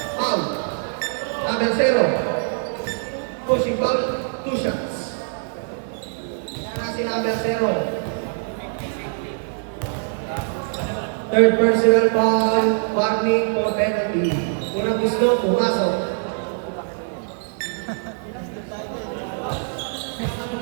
Foul. Number 0. Pushing foul. 2 shots. Kasi number 0. Third personal foul. Warning for penalty. Unang gusto, pumasok.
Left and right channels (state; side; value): silent; left; digital silence